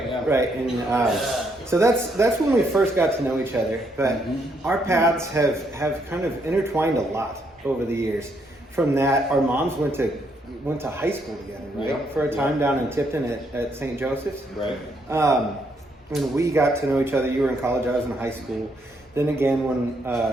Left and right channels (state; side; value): normal; both; correlation 0.74